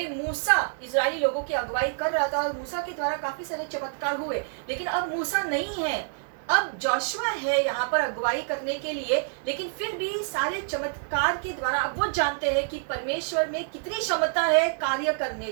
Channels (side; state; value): left; silent; digital silence